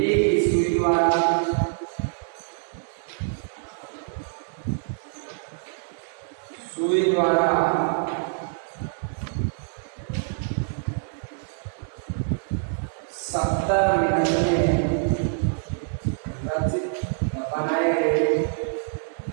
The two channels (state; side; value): silent; left; digital silence